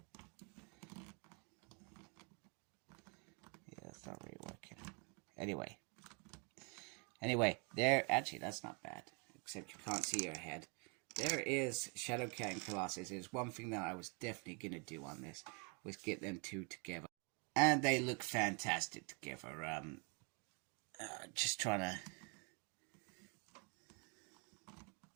Yeah, it's not really working. Anyway, there, actually, that's not bad, except you can't see your head. There is Shadowcat and Colossus. There's one thing that I was definitely going to do on this, was get them two together. And they look fantastic together. Just trying to...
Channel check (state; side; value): quieter; left; 34.2 dB